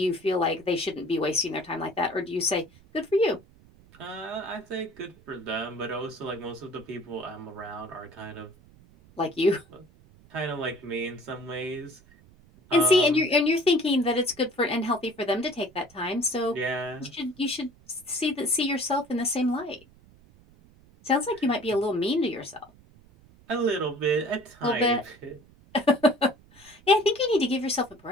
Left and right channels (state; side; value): noise; right; rumble, 26 dB below the sound